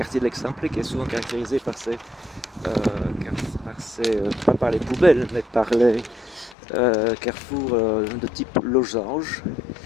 de l'Eixample, qui est souvent caractérisé par pas par les poubelles, mais par les carrefours de type losange.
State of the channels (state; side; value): drops out; right; at 6.6 s